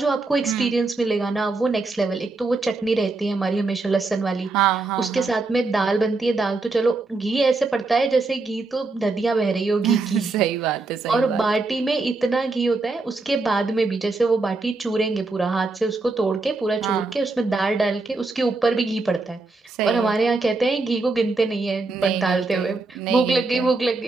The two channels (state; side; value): quieter; left; 3.6 dB